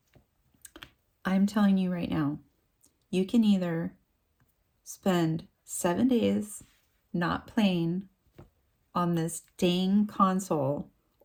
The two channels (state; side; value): identical; both; correlation 1.00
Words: I'm telling you right now, you can either spend 7 days not playing on this dang console,